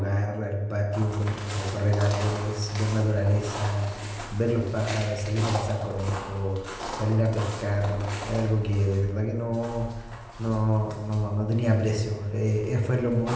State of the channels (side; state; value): both; identical; correlation 1.00